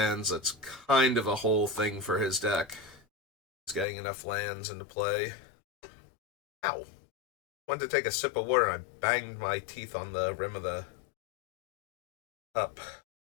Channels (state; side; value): drops out; right; at 3.9 s